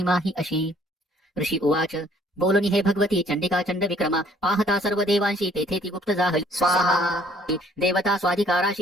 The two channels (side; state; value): both; normal; correlation 0.60